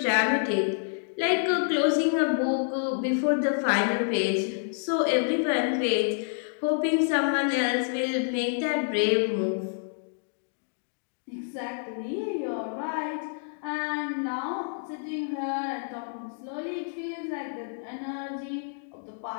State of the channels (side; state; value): right; silent; digital silence